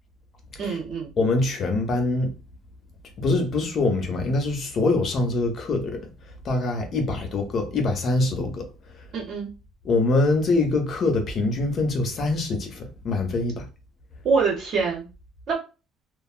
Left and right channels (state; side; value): normal; both; correlation 0.62